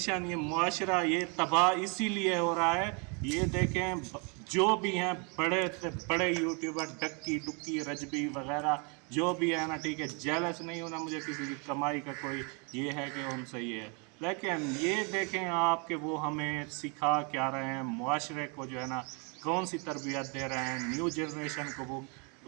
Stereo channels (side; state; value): left; quieter; 34.5 dB